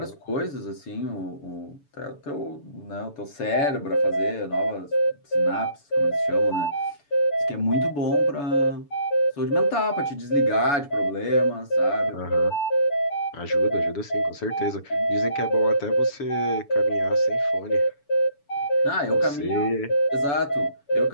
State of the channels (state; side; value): late; right; 7.0 ms